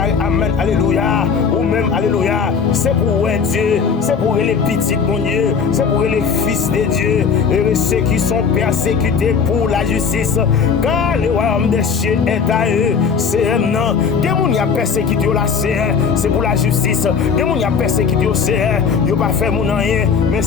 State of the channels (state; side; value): quieter; right; 6.0 dB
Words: amen, alléluia, ou même alléluia, c'est pour Dieu, c'est pour les petits mon Dieu, c'est pour les fils de Dieu, et ceux qui sont persécutés pour la justice, car le royaume des cieux est à eux, c'est un nom, des gens qui ont persécuté la c'est pour la justice, des gens qui ont persécuté ils n'ont pas fait mon rien, mais